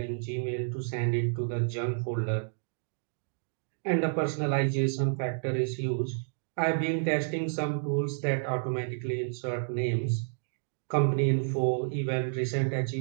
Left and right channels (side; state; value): left; silent; digital silence